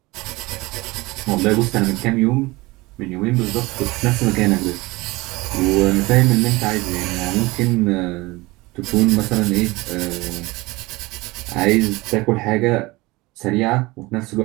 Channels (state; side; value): quieter; left; 21.9 dB